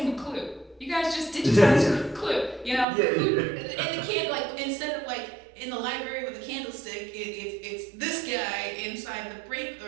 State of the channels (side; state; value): left; drops out; at 2.9 s